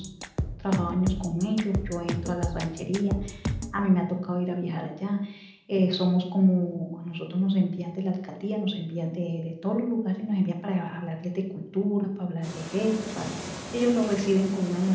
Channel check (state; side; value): identical; both; correlation 1.00